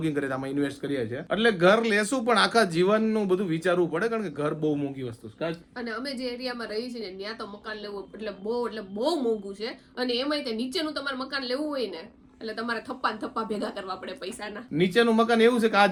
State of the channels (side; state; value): both; identical; correlation 1.00